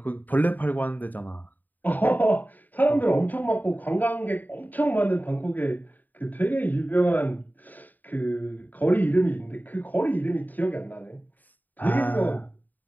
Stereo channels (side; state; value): right; late; 0.086 ms